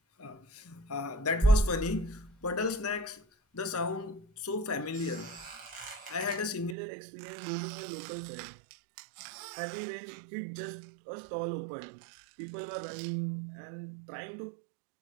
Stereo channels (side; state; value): left; drops out; at 6.8 s